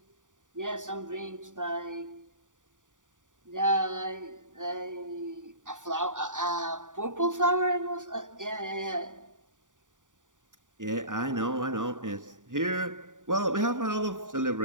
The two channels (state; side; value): late; left; 0.87 ms